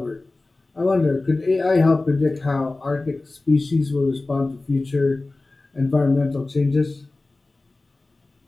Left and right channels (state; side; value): quieter; right; 3.2 dB